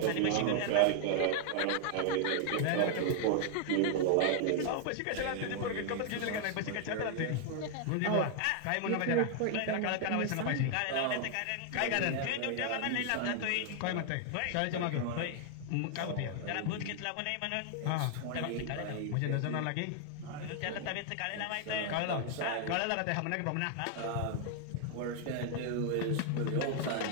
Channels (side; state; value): both; different; correlation 0.00